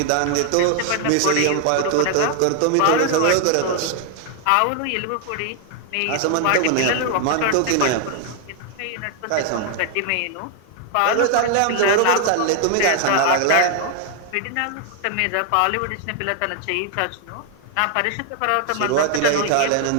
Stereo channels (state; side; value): different; both; correlation 0.00